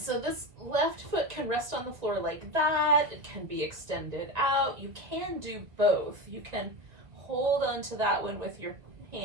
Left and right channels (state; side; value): late; left; 1.7 ms